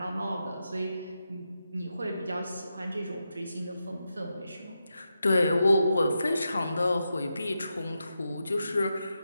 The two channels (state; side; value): inverted; both; correlation -0.87